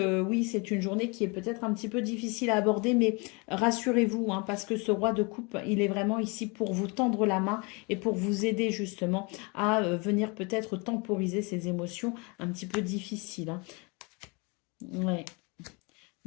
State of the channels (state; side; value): quieter; right; 29.9 dB